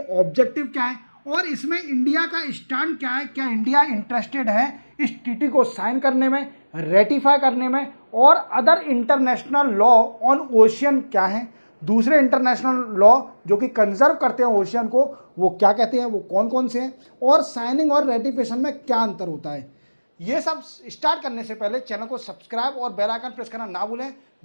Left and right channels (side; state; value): both; inverted; correlation -1.00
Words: ऑब्जेक्टिव क्या है और इसमें इंडिया का स्टैंड क्या है। क्या इंडिया इंटरेस्टेड है इस टीटी को साइन करने में, रेटिफाई करने में, और other international law on ocean क्या है, दूसरे इंटरनेशनल लॉ जो कि कंजर्व करते हैं ओशियन को, वो क्या कहते हैं, वो कौन कौन से हैं, और साइनिंग और रेटिफिकेशन में क्या अंतर होता है। ये सब स्टार्ट करने से पहले चैनल को सब्सक्राइब और बेल आइकन प्रेस करना ना भूलें।